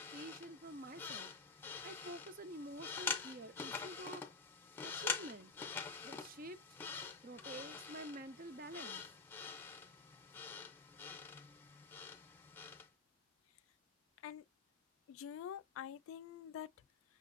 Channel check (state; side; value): quieter; right; 4.3 dB